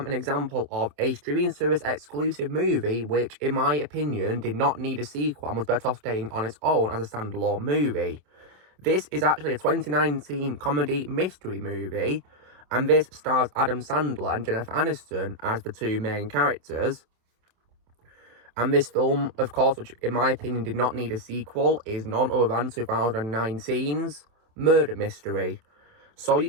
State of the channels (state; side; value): late; left; 27 ms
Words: an example of a streaming service exclusive movie which, in my opinion, did not need a sequel and was better off staying on its own as a standalone movie. This is actually a 2019 comedy mystery movie, and this stars Adam Sandler and Jennifer Aniston as the two main characters. And this film, of course, which in my opinion did not need a sequel, is none other than 2019's Murder Mystery. So